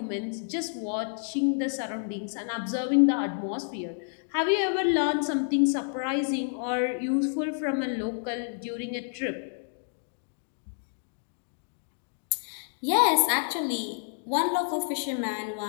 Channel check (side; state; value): right; silent; digital silence